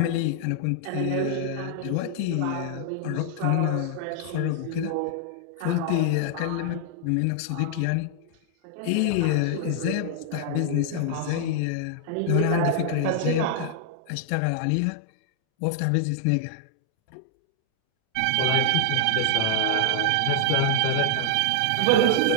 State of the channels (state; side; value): different; both; correlation -0.01